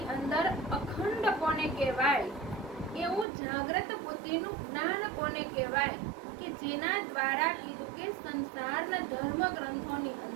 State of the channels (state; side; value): drops out; left; at 3.2 s